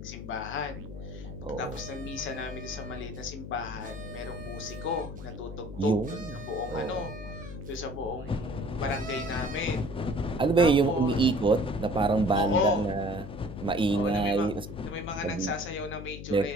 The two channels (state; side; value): noise; left; hum, 10 dB below the sound